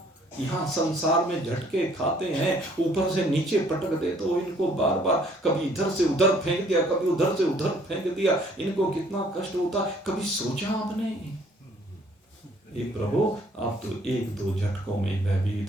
यहाँ संसार में झटके खाते हैं, ऊपर से नीचे पटक दे, तो इनको बार बार कभी इधर से उधर फेंक दिया, कभी उधर से उधर फेंक दिया, इनको कितना कष्ट होता है, कभी सोचा आपने? ये प्रभु आप तो एक दो झटकों में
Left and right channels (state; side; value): normal; both; correlation 0.61